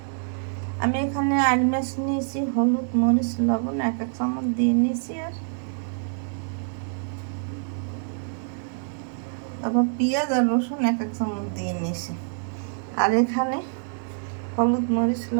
আমি এখানে আইল মাছ নিয়েছি, হলুদ মরিচ লবণ এক চামচ দিয়ে নিয়েছি, আর আবার পেঁয়াজ আর রসুন এক চামচ দিয়ে নিয়েছি। আর এখানে হলুদ মরিচ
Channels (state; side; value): silent; left; digital silence